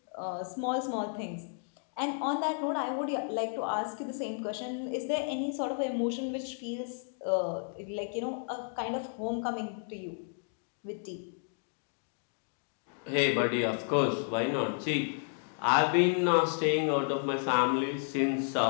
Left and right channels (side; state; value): right; silent; 56 dB below the other